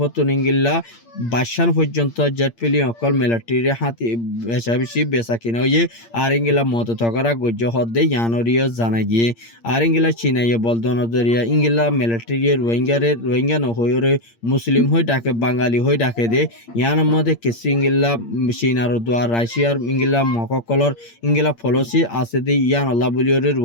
ইংলা 22 পর্যন্ত জেট ফেলি অকল মিলিটারি হাতি বেশা বেশি বেচা কিনা হয়ে আর ইংলা মত তকরা গজ্জ হদ্দে ইয়ানরিও জানাই গিয়ে আর ইংলা চীনাইয়ে বলদন জরিয়া ইংলা মিলিটারি রোহিঙ্গা নহরে মুসলিম হয়ে ডাকে বাঙালি হয়ে ডাকে দে ইয়ার মধ্যে কিছু ইংলা চীনার দোয়া রাশিয়ার ইংলা মককলর ইংলা ফলসি আছে দে ইয়ান আল্লাহ বলিওরে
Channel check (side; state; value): right; late; 8.7 ms